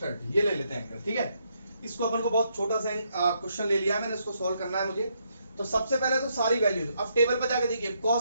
ये ले लेते हैं एंगल, ठीक है। इसको अपन को बहुत छोटा सा क्वेश्चन ले लिया मैंने, इसको सॉल्व करना है मुझे। तो सबसे पहले तो सारी वैल्यूज अब टेबल पर जाके देखिए।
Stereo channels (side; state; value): both; inverted; correlation -0.76